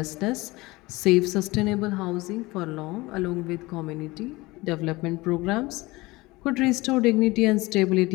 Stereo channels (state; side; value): quieter; right; 21.5 dB